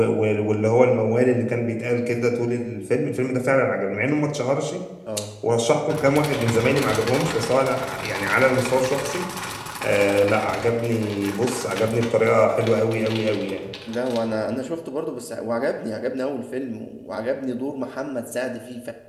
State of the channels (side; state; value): both; identical; correlation 1.00